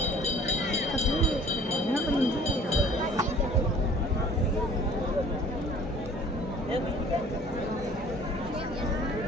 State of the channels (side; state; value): both; normal; correlation 0.51